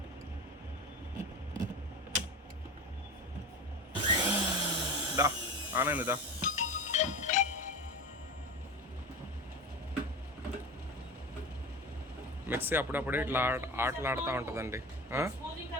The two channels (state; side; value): normal; both; correlation 0.29